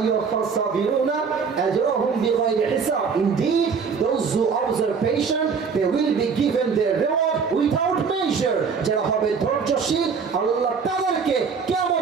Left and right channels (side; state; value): left; quieter; 5.7 dB